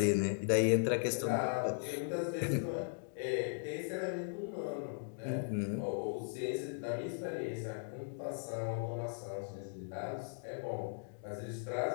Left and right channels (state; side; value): silent; right; digital silence